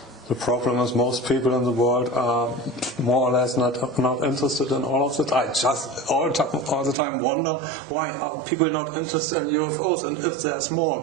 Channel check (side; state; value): left; drops out; at 7.0 s